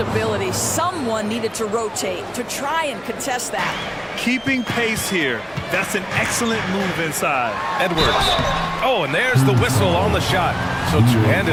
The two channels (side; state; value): both; identical; correlation 1.00